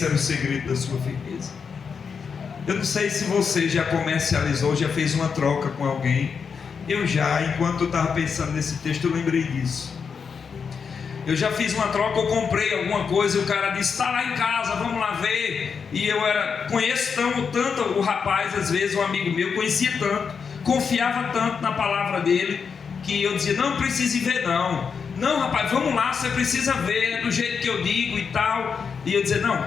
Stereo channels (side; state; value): right; quieter; 6.0 dB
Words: era o segredo da sua firmeza. Eu não sei se você já comercializou, já fez uma troca com alguém Enquanto eu estava pensando nesse texto, eu lembrei disso. Eu já fiz uma troca, eu comprei alguma coisa e o cara disse, está lá em casa, vamos lá ver. E eu conheço tanto o rapaz, às vezes um amigo meu, conhecia tanto, confiava tanto na palavra dele, que eu dizia, não precisa ir ver não. Não, rapaz, vamos lá, você precisa ver, é do jeito que eu digo e tal. E eu dizia,